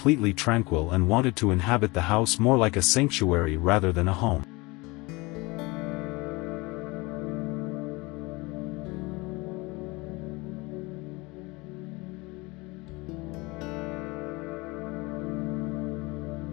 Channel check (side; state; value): right; quieter; 24.3 dB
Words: tranquil and wanted to inhabit the house more like a sanctuary rather than a home.